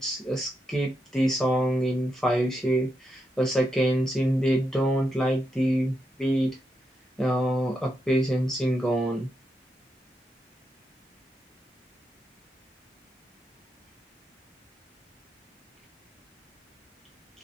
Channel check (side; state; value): both; normal; correlation 0.83